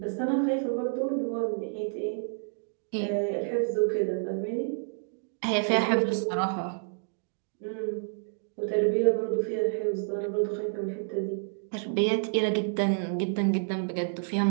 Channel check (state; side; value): silent; left; digital silence